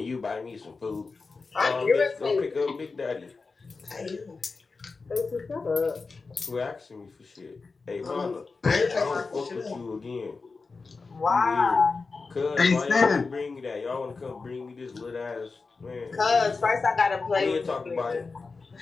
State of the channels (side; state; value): right; quieter; 4.3 dB